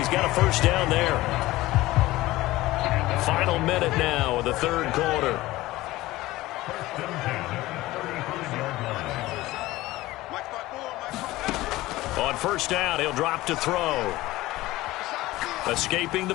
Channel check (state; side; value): quieter; right; 17.9 dB